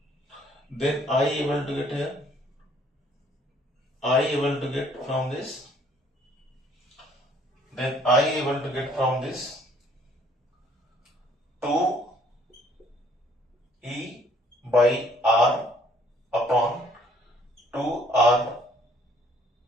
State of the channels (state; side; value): normal; both; correlation 0.61